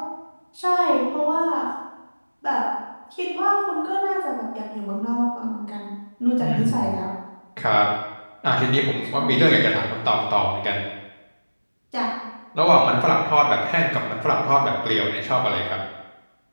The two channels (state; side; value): inverted; both; correlation -1.00